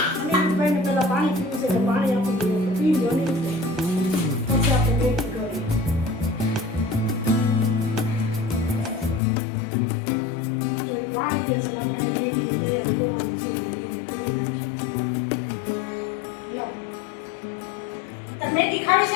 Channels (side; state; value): right; drops out; at 9.2 s